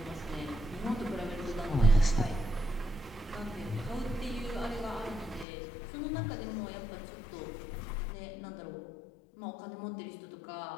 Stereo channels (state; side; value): drops out; right; at 5.5 s